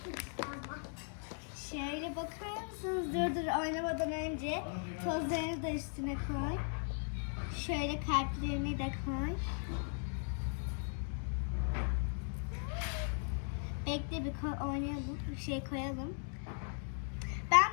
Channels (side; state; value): right; silent; 52 dB below the other